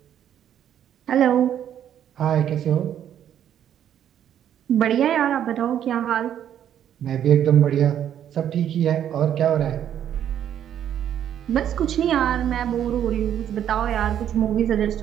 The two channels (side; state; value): left; quieter; 10.1 dB